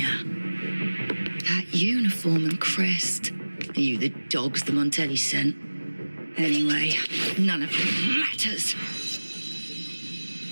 That uniform and crest. Are you the dogs the Montelli sent? Anyway, none of it matters.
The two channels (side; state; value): both; inverted; correlation -1.00